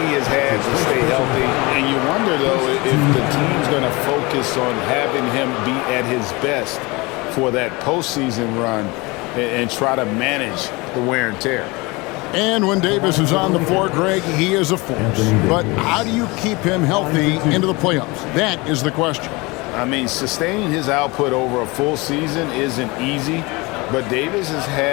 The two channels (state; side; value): quieter; right; 24.8 dB